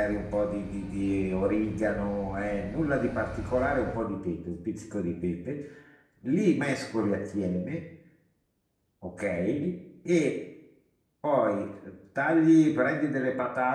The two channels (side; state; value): both; identical; correlation 1.00